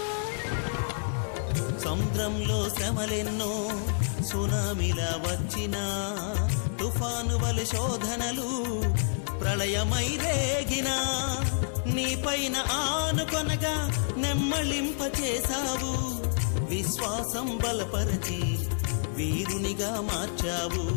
సముద్రంలో శ్రమలెన్నో సునామిలా వచ్చినా తుఫాను వలె శోధనలు ప్రళయమై రేగినా నీపైన ఆనుకొనగా నెమ్మళింప చేశావు విశ్వాసం బలపరచి వీరునిగా మార్చావు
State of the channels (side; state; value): right; silent; 56 dB below the other